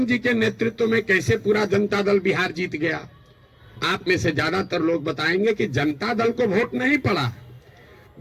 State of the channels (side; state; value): both; identical; correlation 1.00